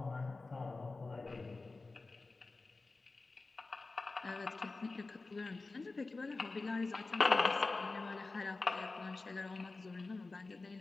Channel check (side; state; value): right; quieter; 3.6 dB